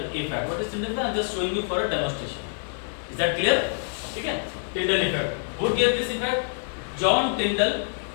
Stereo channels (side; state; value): right; silent; 61 dB below the other